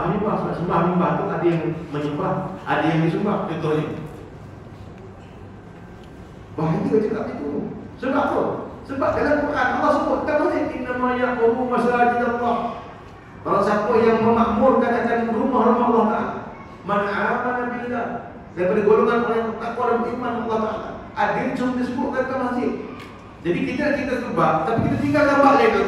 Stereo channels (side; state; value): both; identical; correlation 1.00